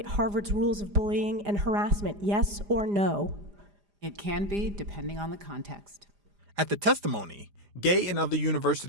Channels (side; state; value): left; late; 4.9 ms